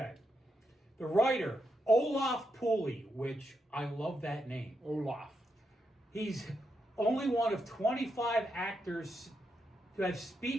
The writer, Olaf Pooley, which I love that name. Olaf. He's only one of 25 actors who have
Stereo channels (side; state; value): both; normal; correlation 0.83